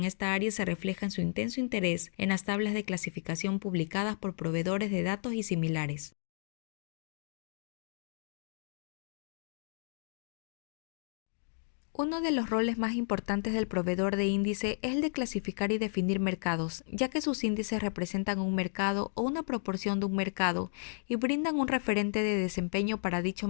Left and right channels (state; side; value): silent; right; digital silence